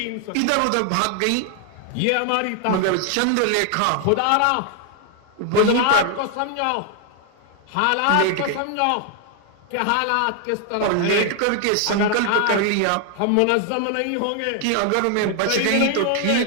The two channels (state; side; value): different; both; correlation 0.00